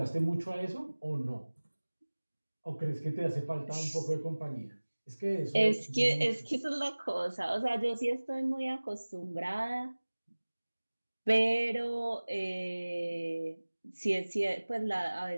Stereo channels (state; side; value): inverted; both; correlation -1.00